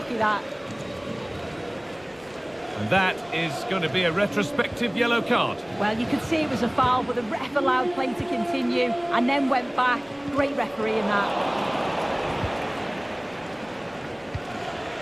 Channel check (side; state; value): left; noise; rumble, 29 dB below the sound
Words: that. And that is going to be a retrospective yellow card. Well, you could see it was a foul, but the ref allowed play to continue and then went back. Great referee in that.